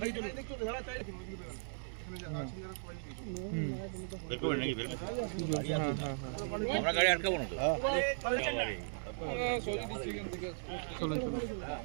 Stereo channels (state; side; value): silent; left; digital silence